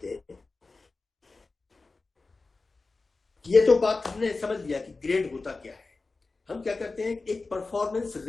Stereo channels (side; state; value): right; quieter; 3.7 dB